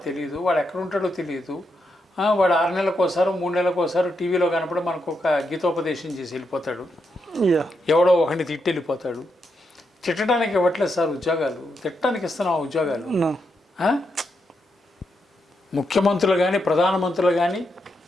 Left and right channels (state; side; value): normal; both; correlation 0.82